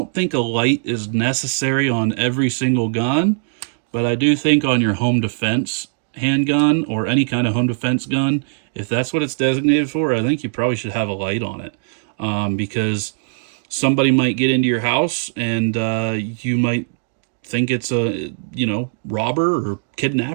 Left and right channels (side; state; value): left; silent; digital silence